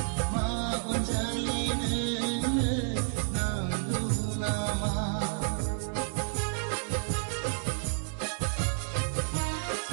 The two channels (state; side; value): silent; left; 57 dB below the other